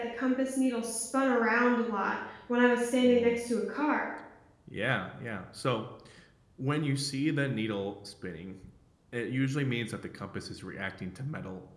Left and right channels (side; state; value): both; identical; correlation 1.00